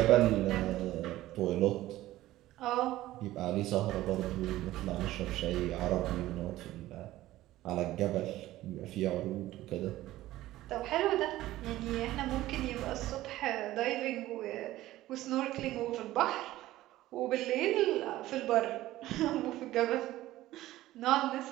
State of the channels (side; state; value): left; quieter; 15.7 dB